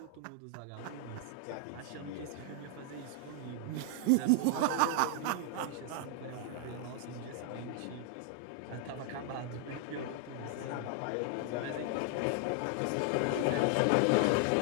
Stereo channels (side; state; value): both; different; correlation 0.00